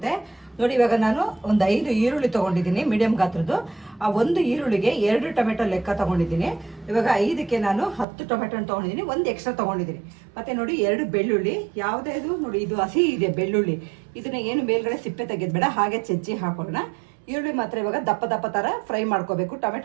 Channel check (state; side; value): drops out; left; at 8.1 s